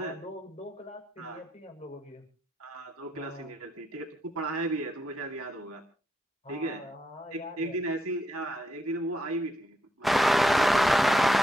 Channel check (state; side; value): normal; both; correlation 0.80